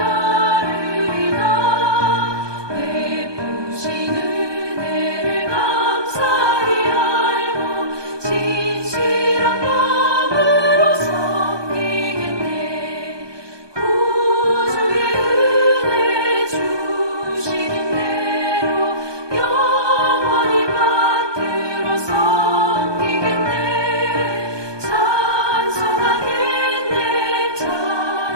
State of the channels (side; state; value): left; late; 1.2 ms